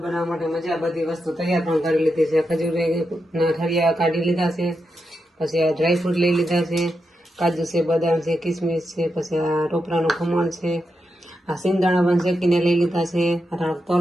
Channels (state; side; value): normal; both; correlation 0.86